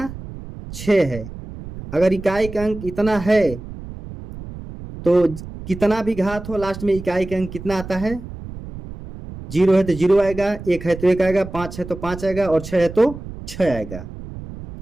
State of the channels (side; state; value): right; noise; rumble, 12 dB below the sound